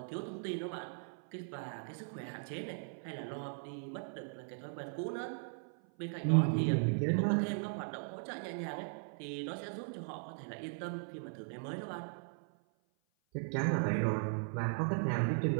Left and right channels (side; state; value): left; silent; 52 dB below the other